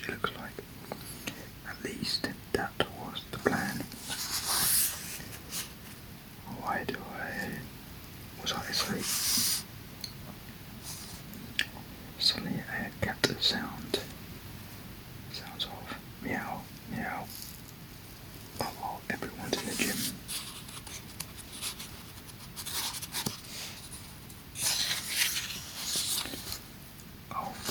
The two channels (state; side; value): noise; right; hum, 22 dB below the sound